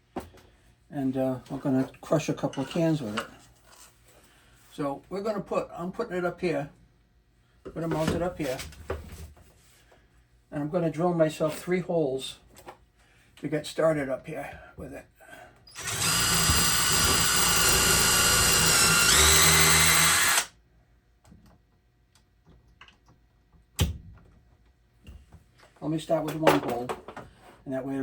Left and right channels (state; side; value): identical; both; correlation 1.00